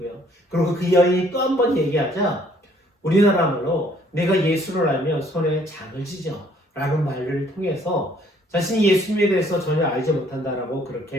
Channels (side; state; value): both; normal; correlation 0.62